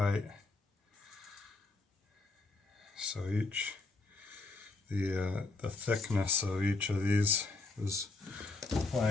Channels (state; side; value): quieter; right; 3.3 dB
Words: So the thickness of each of these is